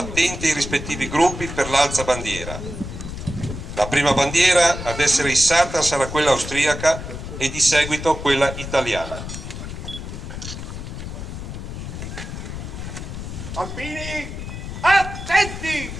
ai rispettivi gruppi per l'alzabandiera. La prima bandiera ad essere issata sarà quella austriaca e di seguito quella italiana. Alpini, attenti!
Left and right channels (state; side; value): noise; left; rumble, 8 dB below the sound